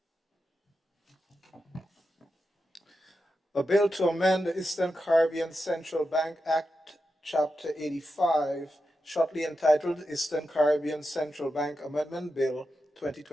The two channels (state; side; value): normal; both; correlation 0.89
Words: A bill to amend the Eastern Caribbean Central Bank Act, Chapter 85, shortly entitled Eastern Caribbean Central Bank Amendment Bill